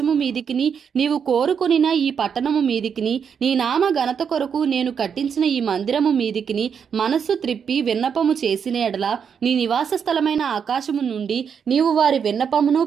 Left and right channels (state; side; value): quieter; left; 7.1 dB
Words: మీదికిని నీవు కోరుకొనిన ఈ పట్టణము మీదికిని నీ నామ ఘనత కొరకు నేను కట్టించిన ఈ మందిరము మీదికిని మనస్సు త్రిప్పి విన్నపము చేసిన ఎడల నీ నివాస స్థలమైన ఆకాశము నుండి నీవు వారి విన్నపమును